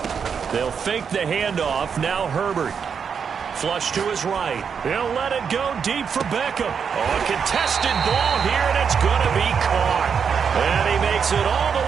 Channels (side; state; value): left; quieter; 6.6 dB